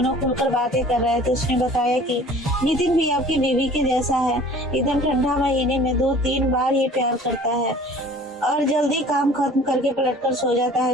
खुलकर बातें कर रहे थे। उसने बताया कि नितिन भी आपकी बीवी के जैसा है, एकदम ठंडा महीने में 2-3 बार ही प्यार करता है और जल्दी काम खत्म करके पलटकर सो जाता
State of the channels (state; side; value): normal; both; correlation 0.47